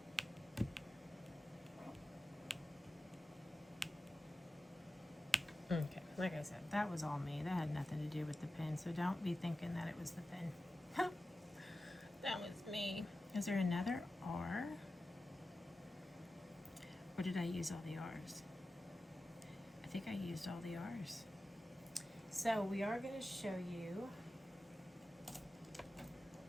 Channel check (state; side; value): normal; both; correlation 0.93